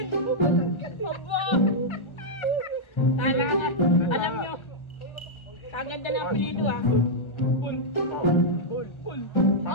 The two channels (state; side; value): late; right; 1.3 ms